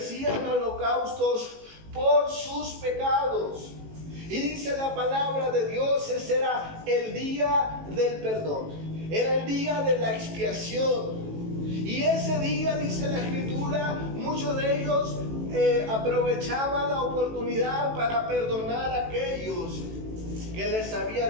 holocaustos por sus pecados. Y dice la palabra de Dios, ese era el día del perdón. Era el día de la expiación. Y ese día, dice la Escritura, muchos de ellos aprovechaban la oportunidad para perdonar a aquellos que les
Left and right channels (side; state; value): left; late; 18 ms